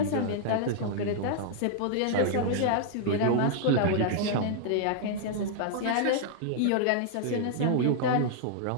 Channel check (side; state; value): both; different; correlation -0.01